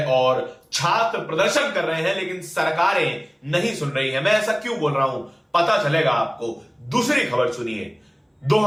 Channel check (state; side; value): identical; both; correlation 1.00